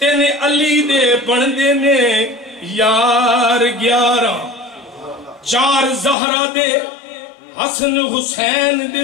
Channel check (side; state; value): right; drops out; at 6.2 s